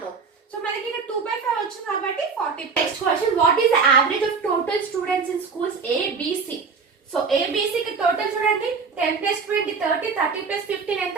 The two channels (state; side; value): quieter; left; 5.1 dB